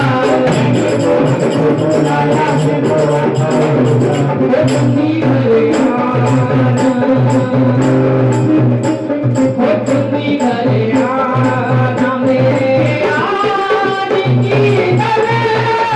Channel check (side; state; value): both; identical; correlation 1.00